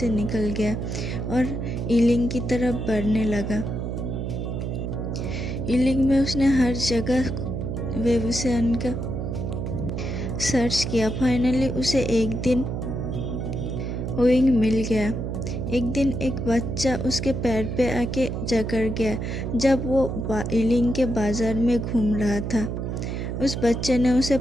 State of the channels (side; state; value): right; noise; hum, 3 dB below the sound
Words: निकल गया और इलिंग की तरफ बढ़ने लगा। इलिंग में उसने हर जगह वेवुसियन का सर्च किया। फाइनली उसे एक दिन वुइंग मिल गया। एक दिन एक बच्चा उसके पैर पे आके जकड़ गया जब वो इलिंग के बाजार में घूम रहा था। उस बच्चे ने उसे